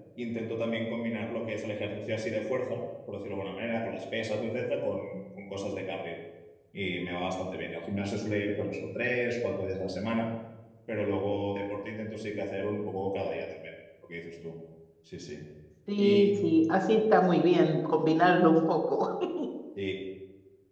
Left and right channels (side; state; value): both; identical; correlation 1.00